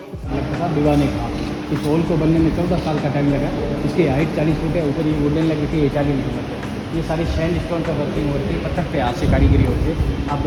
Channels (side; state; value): both; identical; correlation 1.00